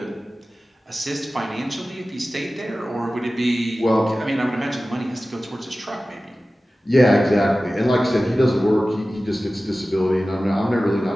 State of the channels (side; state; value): both; normal; correlation 0.96